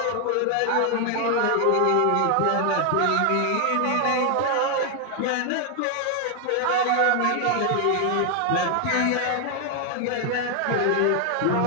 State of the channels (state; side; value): different; both; correlation 0.00